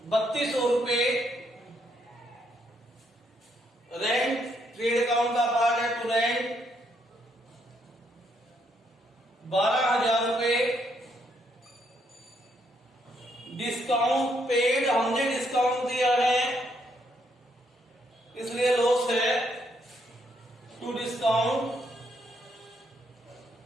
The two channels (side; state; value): both; normal; correlation 0.74